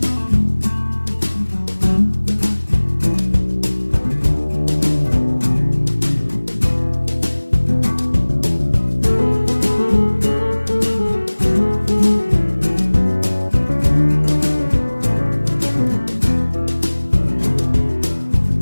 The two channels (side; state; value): both; inverted; correlation -1.00